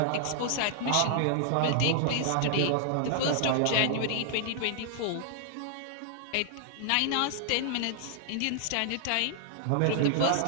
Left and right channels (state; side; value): different; both; correlation 0.00